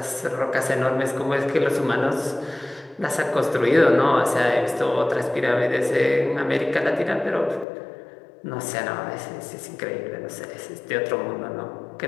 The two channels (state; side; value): drops out; right; at 7.7 s